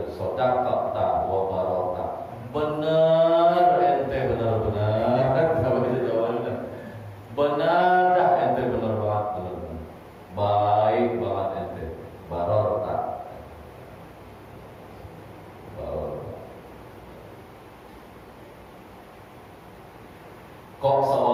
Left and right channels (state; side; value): identical; both; correlation 1.00